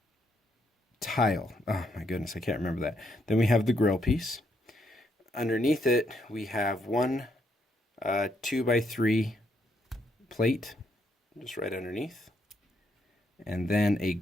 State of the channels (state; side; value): normal; both; correlation 0.75